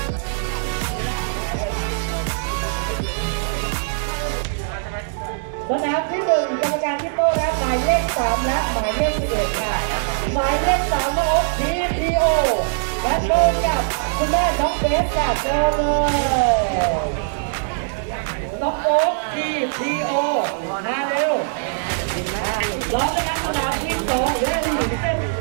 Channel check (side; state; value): left; silent; digital silence